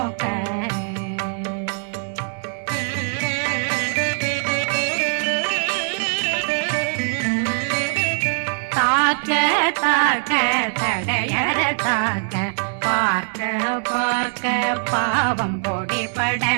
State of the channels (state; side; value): silent; left; digital silence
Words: தாக்க தாக்க தடையற தாக்க பார்க்க பார்க்க பாவம் பொடிபட